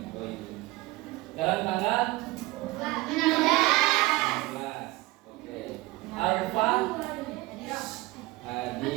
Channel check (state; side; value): quieter; left; 20.4 dB